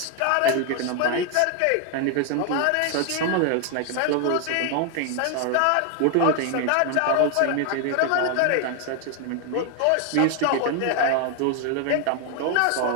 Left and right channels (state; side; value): different; both; correlation 0.00